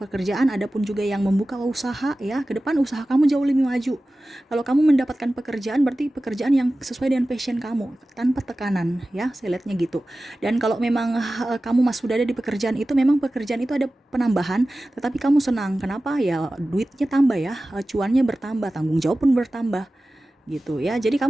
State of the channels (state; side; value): normal; both; correlation 0.96